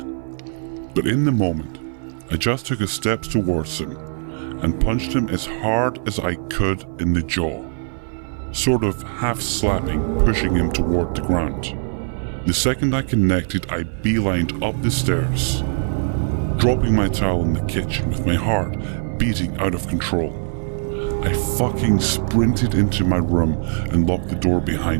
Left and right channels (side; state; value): left; silent; 56 dB below the other